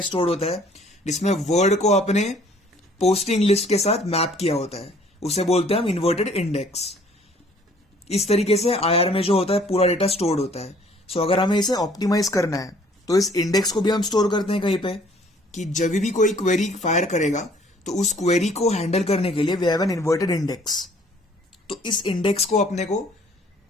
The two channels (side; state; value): both; normal; correlation 0.58